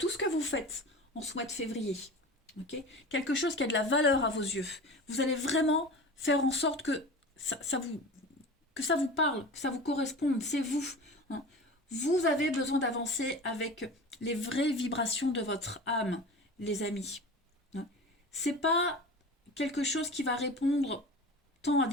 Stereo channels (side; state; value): both; normal; correlation 0.34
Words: ce que vous faites en ce mois de février. Okay, quelque chose qui a de la valeur à vos yeux. Vous allez vraiment faire en sorte que que ça vous parle, que ça vous corresponde. C'est vous, hein. Vous avez besoin d'avancer avec les vraies vibrations de votre âme, les amis, hein. C'est pas quelque chose qui va répondre tant à